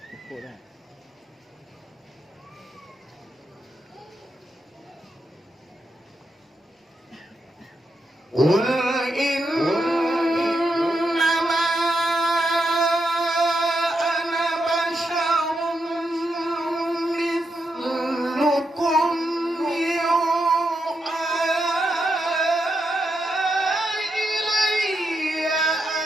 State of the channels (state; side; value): normal; both; correlation 0.83